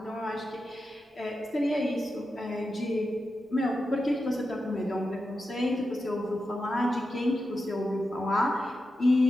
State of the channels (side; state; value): both; normal; correlation 0.90